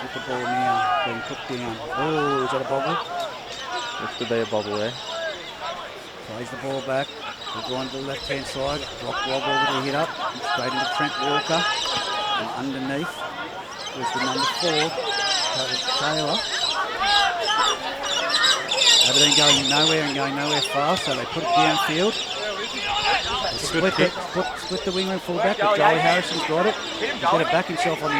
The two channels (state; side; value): identical; both; correlation 1.00